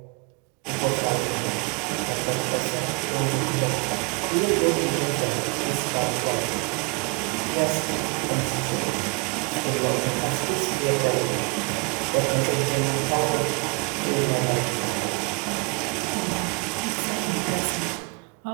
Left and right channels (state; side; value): quieter; left; 31.2 dB